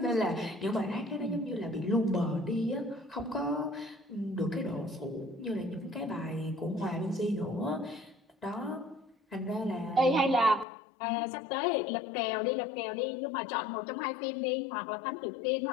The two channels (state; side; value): drops out; right; at 10.7 s